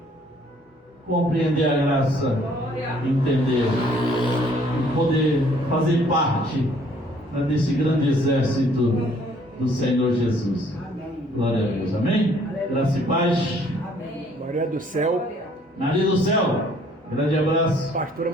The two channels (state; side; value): normal; both; correlation 0.61